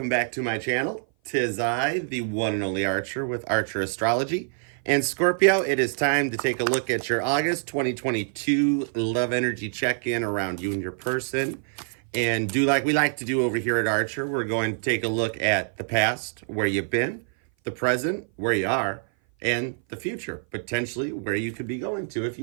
back to my channel. Tis I, the one and only Archer with Archer Astrology. And Scorpio, it is time to take a look at your August 2022 love energy check-in around you and your person. And do like we like to do over here at Archer, we're going to take a look at the past, where you've been, the present, where you are, and the future, potentially where you could be going to if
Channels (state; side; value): silent; left; 57 dB below the other